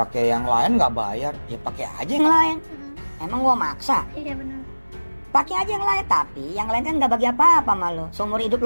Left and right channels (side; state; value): both; inverted; correlation -1.00